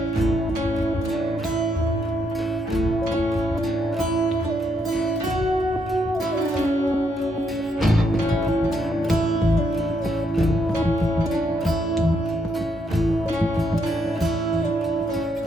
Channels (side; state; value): both; normal; correlation 0.75